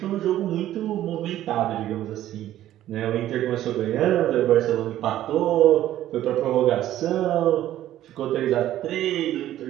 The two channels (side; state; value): left; quieter; 13.1 dB